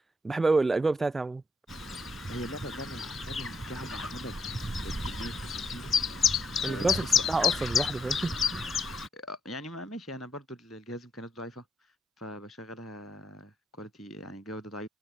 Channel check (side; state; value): both; normal; correlation 0.75